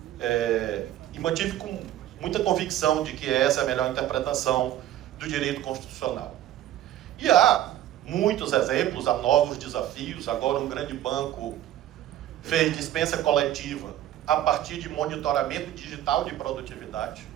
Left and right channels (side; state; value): left; quieter; 12.7 dB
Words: e mantive com muita convicção de que essa é a melhor interpretação do direito constitucional. E há muitos exemplos, há novos desafios. Agora um grande banco fez dispensa coletiva a partir de monitoramento digital de produtividade.